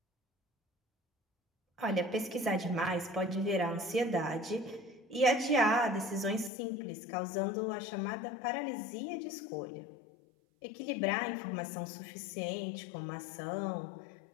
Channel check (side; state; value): right; drops out; at 6.5 s